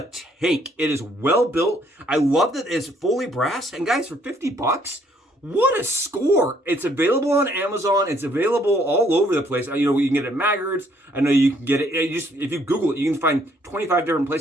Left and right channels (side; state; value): both; normal; correlation 0.66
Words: tank. It is well built. I love that it's fully brass. And guys, for 50 bucks, what a score. It's available on Amazon. It's available all over the place. You know, you can get it at Maggards. I know you can get it. If you Google it, you can find 25 different